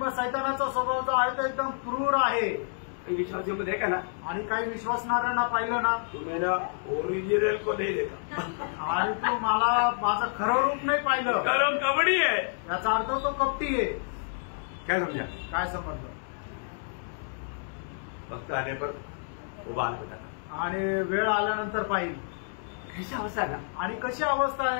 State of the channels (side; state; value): right; silent; digital silence